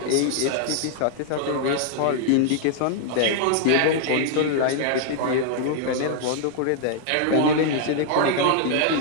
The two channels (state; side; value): different; both; correlation 0.00